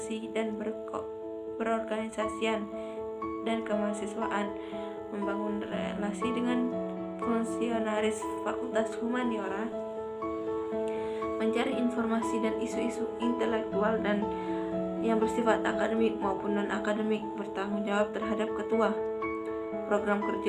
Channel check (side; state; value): both; identical; correlation 1.00